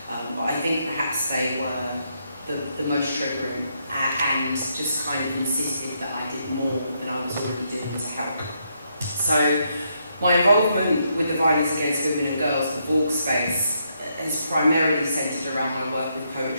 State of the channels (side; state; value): both; inverted; correlation -0.77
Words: but I think perhaps they were the most triggering and just kind of insisted that I did more than I was already doing to help. So my involvement with the violence against women and girls, the Vogue space, is primarily centred around my work with